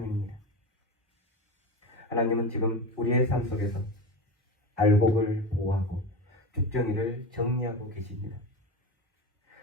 하나님은 지금 우리의 삶 속에서 알곡을 보호하고 쭉정이를 정리하고 계십니다.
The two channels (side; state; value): both; normal; correlation 0.24